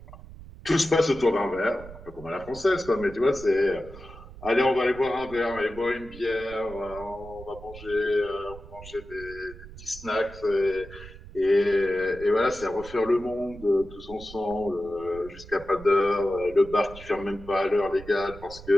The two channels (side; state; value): right; noise; rumble, 16 dB below the sound